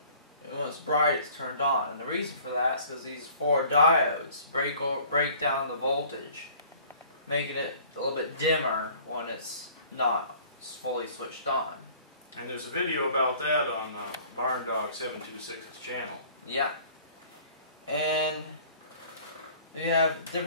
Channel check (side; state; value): both; inverted; correlation -0.52